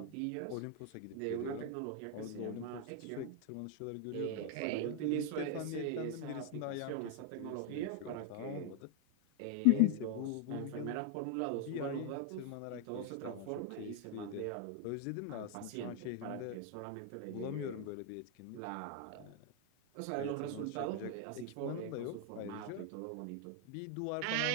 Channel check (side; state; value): both; different; correlation 0.00